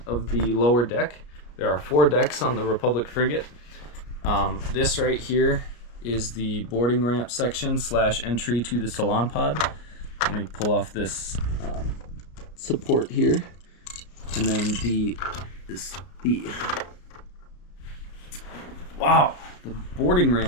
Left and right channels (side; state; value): right; late; 34 ms